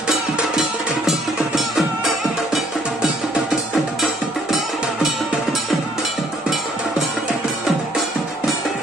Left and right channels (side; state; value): both; normal; correlation 0.64